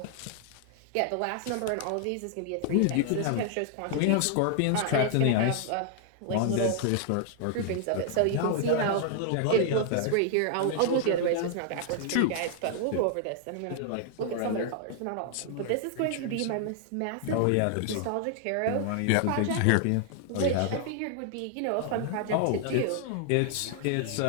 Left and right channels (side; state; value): both; different; correlation 0.00